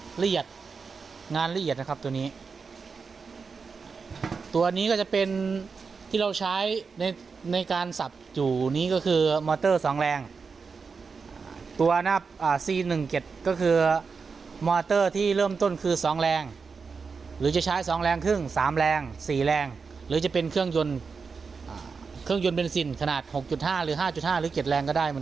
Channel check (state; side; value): quieter; left; 5.1 dB